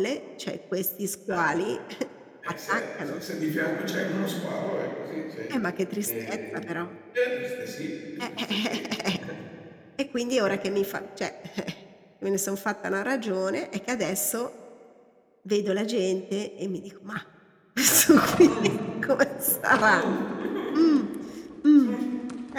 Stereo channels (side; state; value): both; identical; correlation 1.00